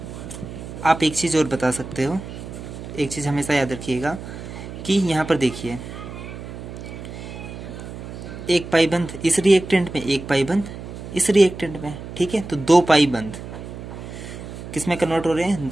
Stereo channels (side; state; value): right; noise; hum, 11 dB below the sound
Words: आप एक चीज़ और बता सकते हो। एक चीज़ हमेशा याद रखिएगा कि यहाँ पर देखिए, एक पाइबंध इस रिएक्टेंट में, एक पाइबंध इस रिएक्टेंट में। ठीक है, तो दो पाइबंध किस में कन्वर्ट हो रहे हैं,